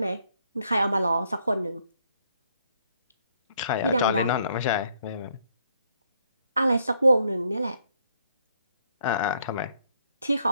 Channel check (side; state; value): both; inverted; correlation -0.70